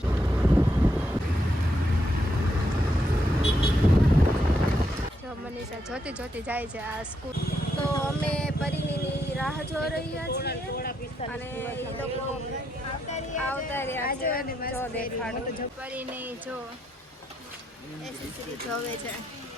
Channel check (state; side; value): normal; both; correlation 0.79